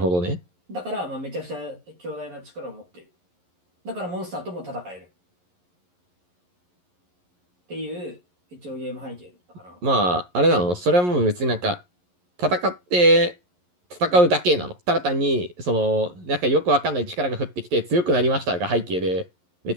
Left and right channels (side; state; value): left; late; 11 ms